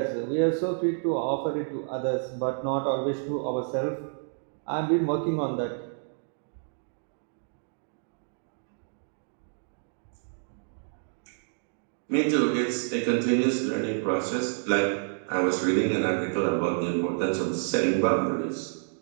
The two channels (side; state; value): left; silent; digital silence